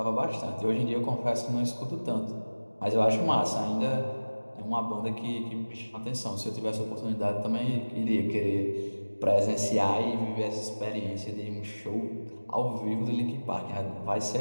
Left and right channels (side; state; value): both; inverted; correlation -1.00